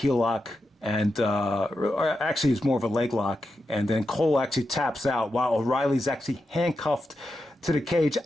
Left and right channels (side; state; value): both; normal; correlation 0.88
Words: lock, and or actually it's more of a leg lock. And then Cole actually taps out while O'Reilly's actually handcuffed to the cage.